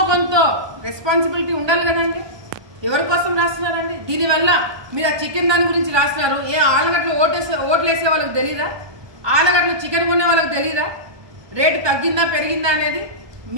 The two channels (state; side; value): late; left; 1.2 ms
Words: కొంత రెస్పాన్సిబిలిటీ ఉండాలి కదండి. ఎవరి కోసం రాస్తున్నారండి? దీనివల్ల మీరు ఆ చికెన్ దాని గురించి రాస్తున్నారు. ఏ ఆలగడ్డలో ఓట్లు వేసే వాళ్ళకి తెలీదా? ఆలగడ్డలో చికెన్ కొనే వాళ్ళకి తెలీదా రేటు తగ్గిందా పెరిగిందా అనేది?